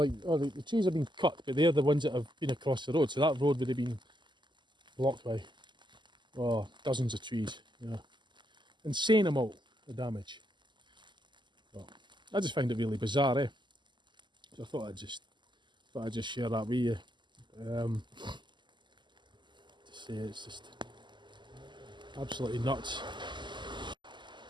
oh, the trees have been cut, but they're the ones that have been across the road, so that road would have been blocked by, oh, dozens of trees, you know. Insane amount of damage. Well, I just find it really bizarre, eh? So I thought I'd just share that with you. To say it's just absolutely nuts.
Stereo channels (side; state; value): left; late; 0.22 ms